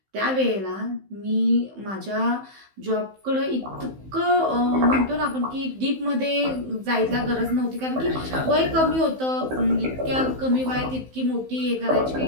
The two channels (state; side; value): late; left; 15 ms